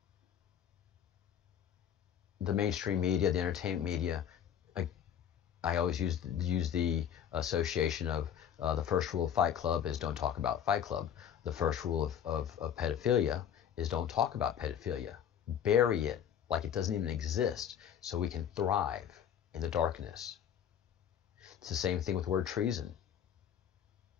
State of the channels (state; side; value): quieter; right; 9.2 dB